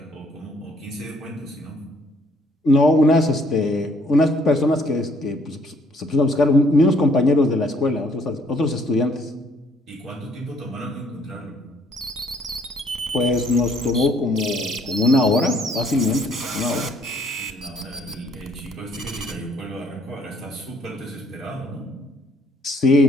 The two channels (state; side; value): normal; both; correlation 0.63